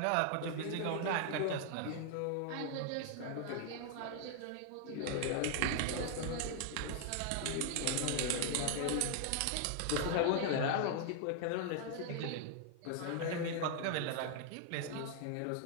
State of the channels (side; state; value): both; different; correlation 0.00